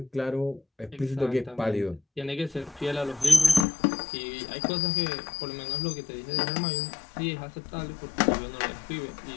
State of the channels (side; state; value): right; drops out; at 3.7 s